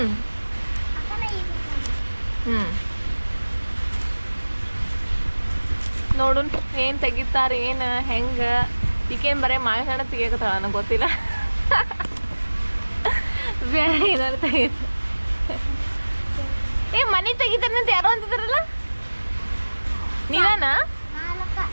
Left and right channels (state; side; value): inverted; both; correlation -1.00